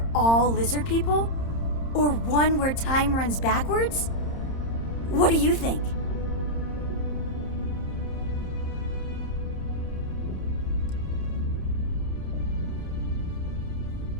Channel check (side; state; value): right; late; 30 ms